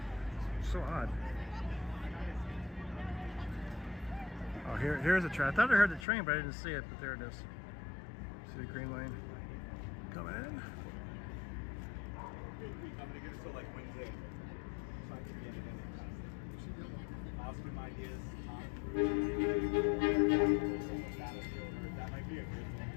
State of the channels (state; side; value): drops out; right; at 6.1 s